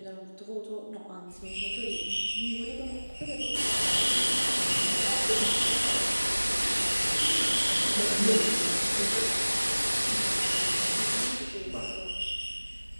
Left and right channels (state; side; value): inverted; both; correlation -1.00